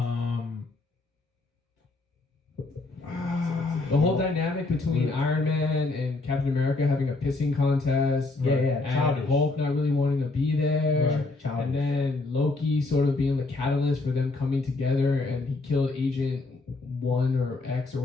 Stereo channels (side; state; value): right; quieter; 3.3 dB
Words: The whole dynamic between Iron Man and Captain America having a pissing contest. Yeah, And childish. Hulk not really wanting to be there. Right, childish. And then Loki sort of being the catalyst for them coming together, and he killed Agent 1 or X or